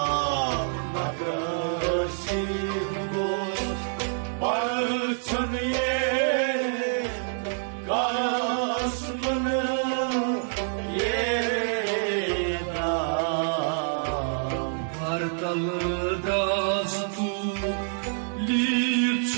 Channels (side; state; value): left; silent; digital silence